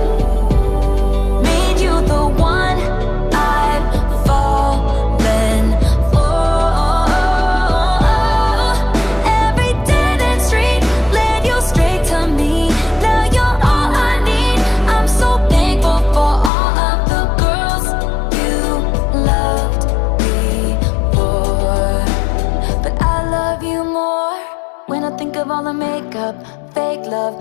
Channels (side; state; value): right; drops out; at 16.5 s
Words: made you the one I've fallen for. Every dead end street led you straight to me. Now you're all I need. I'm so thankful for all of the girls you loved before. But I love you more when I think of all the makeup, fake love